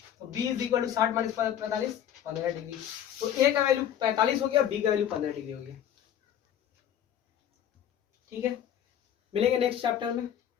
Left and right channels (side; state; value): right; quieter; 10.1 dB